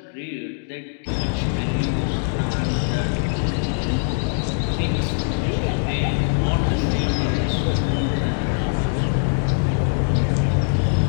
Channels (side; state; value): right; silent; digital silence